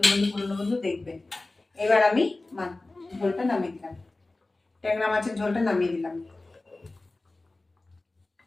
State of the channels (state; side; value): quieter; right; 3.1 dB